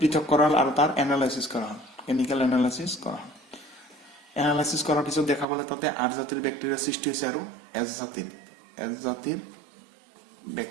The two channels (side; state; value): left; drops out; at 5.5 s